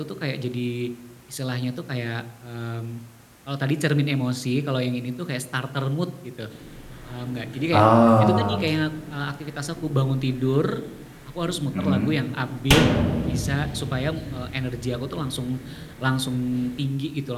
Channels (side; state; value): both; identical; correlation 1.00